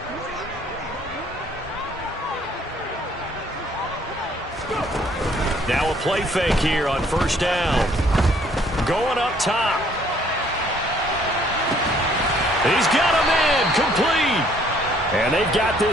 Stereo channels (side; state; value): both; normal; correlation 0.62